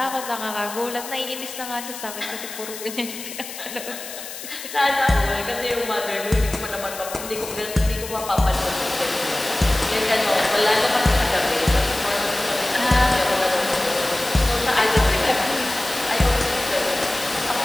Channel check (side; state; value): left; noise; hiss, 11 dB below the sound